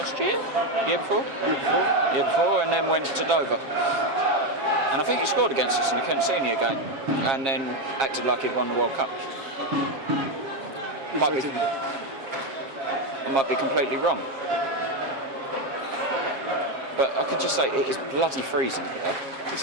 year. Year before, and then went to Dover. And I think he scored against us in the Kent Senior game, and then acted like he'd won the World Cup. I might be completely wrong, but I could just say it is bloody freezing here. It's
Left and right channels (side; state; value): left; late; 7.4 ms